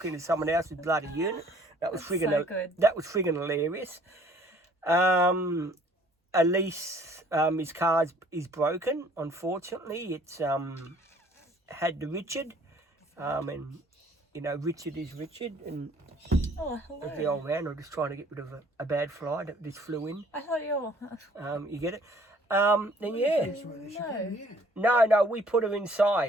into someone else's bloody unit. That was friggin' hilarious. Elise, his car is broken. Unfortunately, it's had the Richard, and you know Richard is Richard, and hello. the old man. I'm just trying to get rid of a bad fly that just flew in. I thought you were... You get it? Then yeah. No, we put her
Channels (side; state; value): both; normal; correlation 0.58